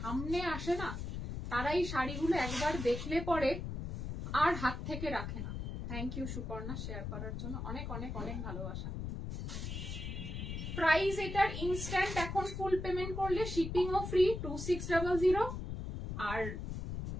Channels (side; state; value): left; noise; rumble, 5 dB below the sound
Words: আসে না তারাই শাড়িগুলো একবার দেখলে পরে আর হাত থেকে রাখে না। থ্যাংক ইউ সুপর্ণা শেয়ার করার জন্য, অনেক অনেক অনেক ভালোবাসা। প্রাইস এটার ইনস্ট্যান্ট এখন ফুল পেমেন্ট করলে শিপিং ও ফ্রি 2600, আর